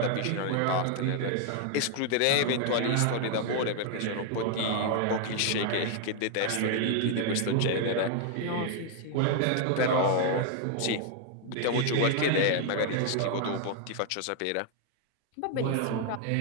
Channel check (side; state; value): both; different; correlation 0.00